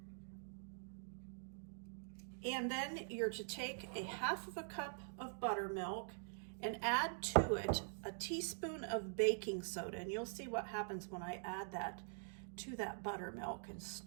and then you're to take a 1/2 cup of buttermilk and add to it a teaspoon of baking soda. And you'll see what happens when I add that to that buttermilk and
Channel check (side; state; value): left; silent; digital silence